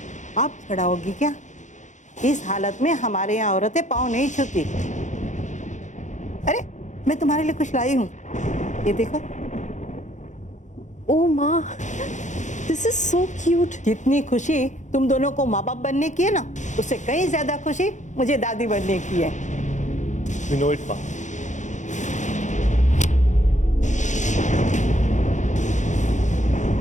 आप खड़ा होगी क्या? इस हालत में हमारे यहाँ औरतें पाँव नहीं छूती। अरे मैं तुम्हारे लिए कुछ लाई हूँ, ये देखो। ओ माँ, दिस इज सो क्यूट। जितनी खुशी तुम दोनों को माँ बाप बनने की है ना, उससे कहीं ज्यादा खुशी मुझे दादी बनने की है। We know it, माँ।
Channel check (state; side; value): late; right; 0.35 ms